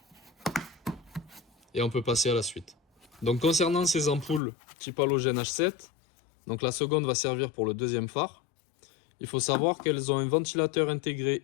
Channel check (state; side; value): drops out; right; at 4.4 s